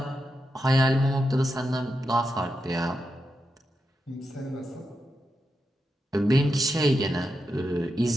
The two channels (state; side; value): normal; both; correlation 0.87